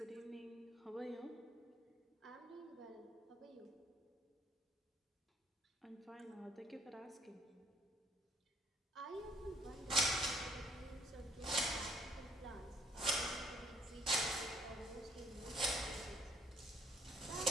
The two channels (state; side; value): normal; both; correlation 0.63